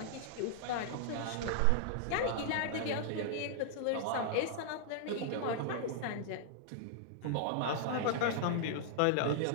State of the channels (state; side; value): different; both; correlation -0.01